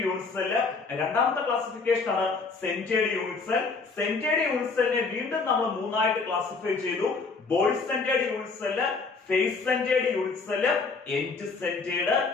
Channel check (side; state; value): right; quieter; 4.4 dB